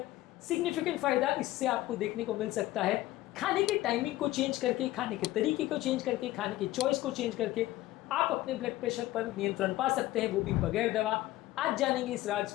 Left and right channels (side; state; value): right; quieter; 16.4 dB